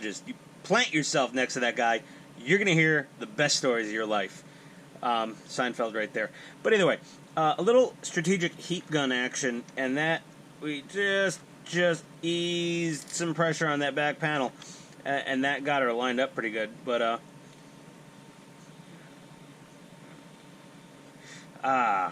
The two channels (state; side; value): identical; both; correlation 1.00